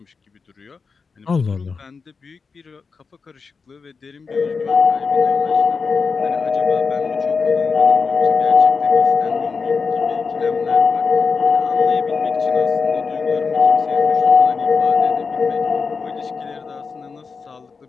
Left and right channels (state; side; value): quieter; right; 5.0 dB